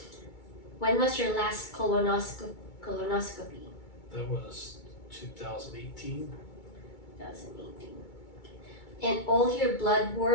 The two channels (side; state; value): right; late; 2.3 ms